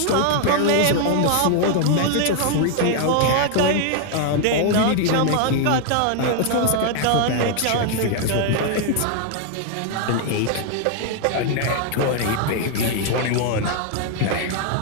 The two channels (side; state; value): both; different; correlation 0.00